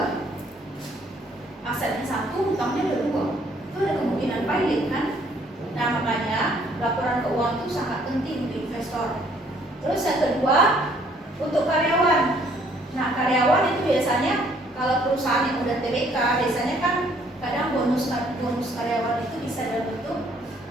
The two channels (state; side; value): normal; both; correlation 0.63